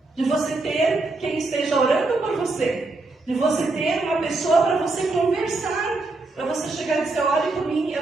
de você ter quem esteja orando por você, de você ter uma pessoa para você conversar, para você chegar e dizer, olhe por mim,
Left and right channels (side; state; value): left; quieter; 3.3 dB